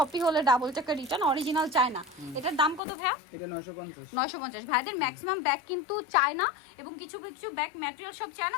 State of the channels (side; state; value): right; drops out; at 2.8 s